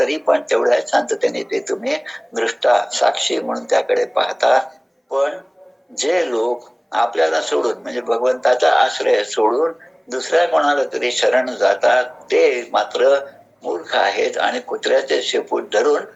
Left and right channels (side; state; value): both; identical; correlation 1.00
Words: पण तेवढ्या शांततेने ते तुम्ही दृष्टा साक्षी म्हणून त्याकडे पाहता. पण जे लोक आपल्याला सोडून, म्हणजे भगवंताचा आश्रय सोडून दुसऱ्या कोणाला तरी शरण जातात ते मात्र मूर्ख आहेत आणि कुत्र्याचे शेपूट धरून